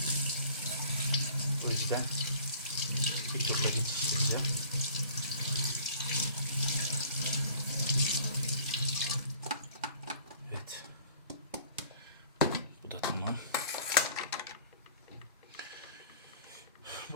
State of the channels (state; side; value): inverted; both; correlation -0.50